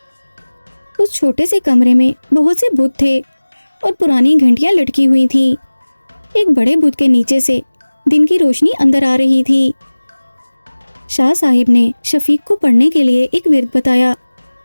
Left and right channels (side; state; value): both; inverted; correlation -1.00